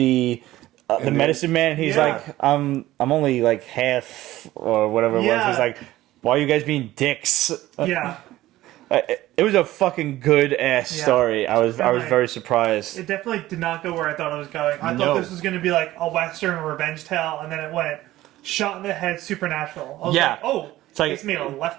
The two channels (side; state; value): left; quieter; 15.8 dB